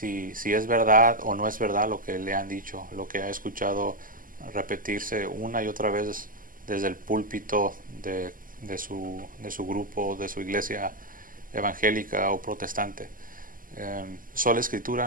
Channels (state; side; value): late; left; 0.41 ms